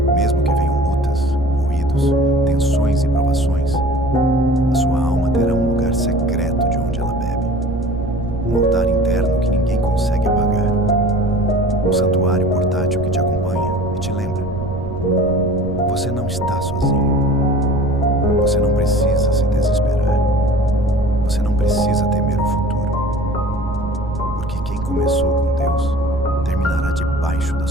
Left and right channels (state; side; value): noise; right; rumble, 9 dB below the sound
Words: mesmo que venham lutas, ruídos, tensões e provações, a sua alma terá um lugar secreto de onde ela bebe. Um altar interno que ninguém consegue apagar. Um santuário portátil que te acompanha e te lembra: você não está sozinho. Você não precisa se desesperar. Você não precisa temer o futuro. Porque quem começou com Deus terminará debaixo da